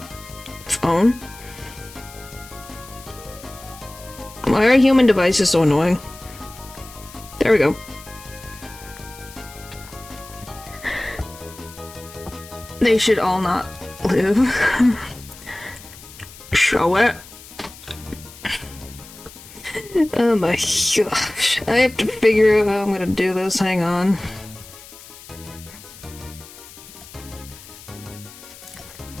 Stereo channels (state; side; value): noise; left; hiss, 18 dB below the sound